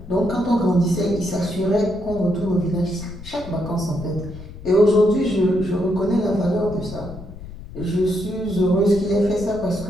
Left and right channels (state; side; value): noise; left; rumble, 14 dB below the sound